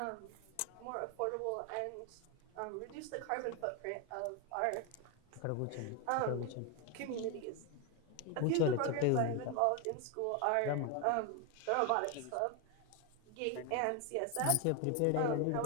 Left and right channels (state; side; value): different; both; correlation 0.01